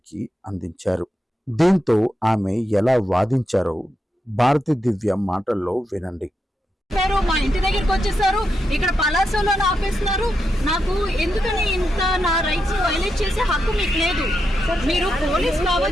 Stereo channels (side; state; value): both; normal; correlation 0.85